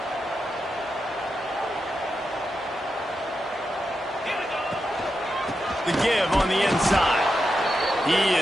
The give on the inside. He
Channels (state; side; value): normal; both; correlation 0.87